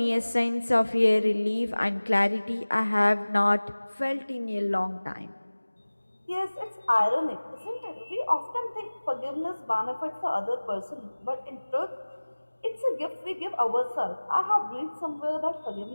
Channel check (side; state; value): both; inverted; correlation -1.00